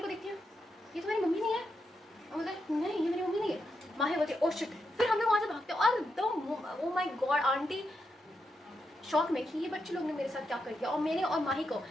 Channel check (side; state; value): both; normal; correlation 0.84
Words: देखती है ये तो मेरी मम्मी नहीं है. और बोलते नहीं ये मेरी मम्मी नहीं है. माही बोलती है ओ शिट. फिर हम लोग वहाँ से भागते हैं और the O my God aunty shock में कि ये बच्चे लोग ने मेरे साथ क्या कर दिया. और मैंने और माही को